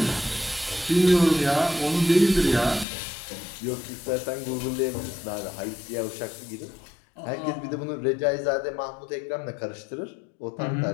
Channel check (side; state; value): right; drops out; at 2.9 s